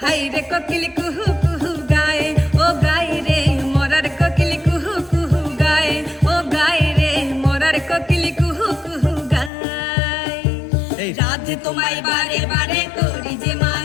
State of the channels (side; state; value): right; drops out; at 9.5 s